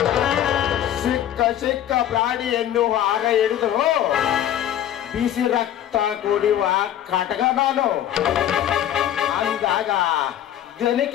ಸಿಕ್ಕ ಪ್ರಾಣಿಯನ್ನು ಆಗ ಹಿಡಿದು ಬಿಸಿ ರಕ್ತ ಕುಡಿಯುವ ಕಟಕ ನಾನು ಅಂದಾಗ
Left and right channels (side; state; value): right; quieter; 11.3 dB